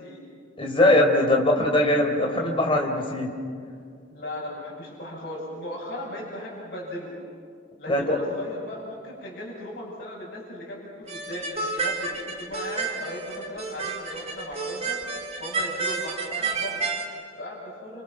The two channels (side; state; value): both; normal; correlation 0.24